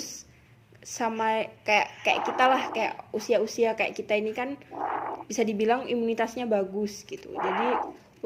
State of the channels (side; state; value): both; identical; correlation 1.00